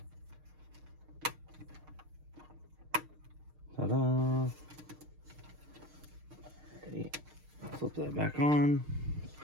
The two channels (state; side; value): late; left; 6.5 ms